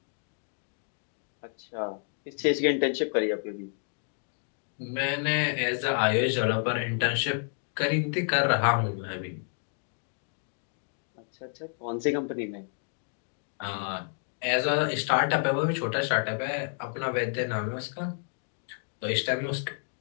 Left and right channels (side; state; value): right; silent; 58 dB below the other